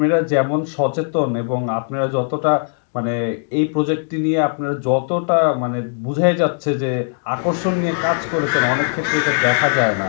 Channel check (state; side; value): silent; right; 66 dB below the other